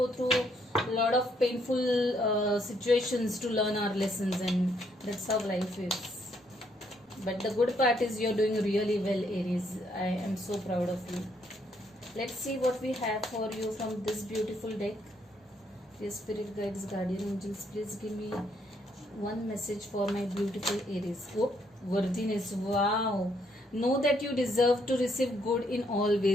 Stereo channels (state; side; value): normal; both; correlation 0.72